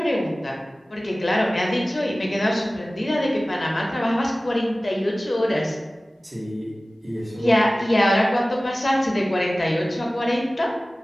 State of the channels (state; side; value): normal; both; correlation 0.97